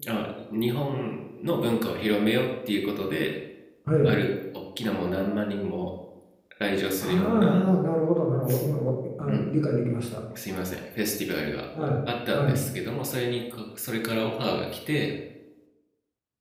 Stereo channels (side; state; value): both; identical; correlation 1.00